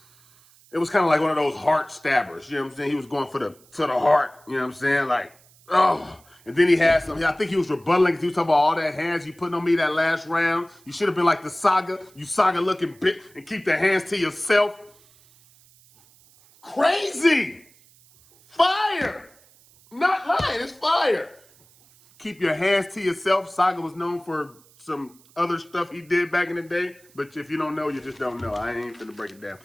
It was kind of like one of those heart stabbers. You know what I'm saying? He was going to the heart. You know what I'm saying? Like, oh. And then he had some, I think he was rebutting because he was talking about all that hands you putting on me that last round. You should have been like the Saga. You Saga looking bit and keep the hands to yourself. Crazy. Fire. Not lying, it's fire. Keep your hands to yourself. Saga was known for some other stuff he did back in the day, but if you don't know, you just don't know. I ain't finna break it down.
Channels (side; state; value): right; noise; hiss, 28 dB below the sound